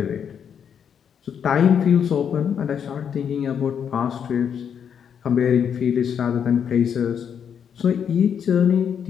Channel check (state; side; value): quieter; right; 7.9 dB